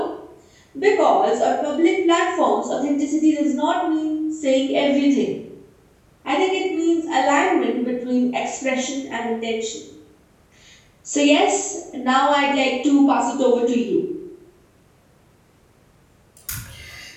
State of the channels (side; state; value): both; identical; correlation 1.00